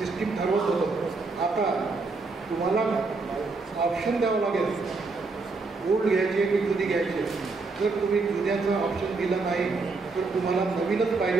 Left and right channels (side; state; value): left; quieter; 3.9 dB